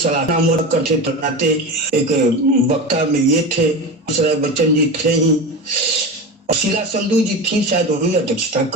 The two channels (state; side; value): normal; both; correlation 0.25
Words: करते बनाते एक वक्ता में ये थे, बच्चन जी थे ही, और शीला संधू जी थी, शायद वही अध्यक्षता